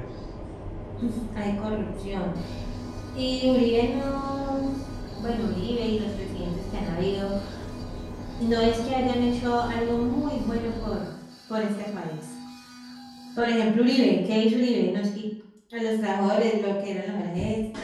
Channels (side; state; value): both; identical; correlation 1.00